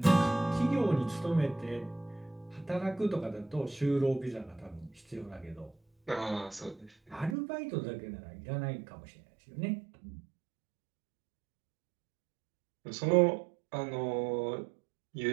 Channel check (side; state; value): left; drops out; at 7.4 s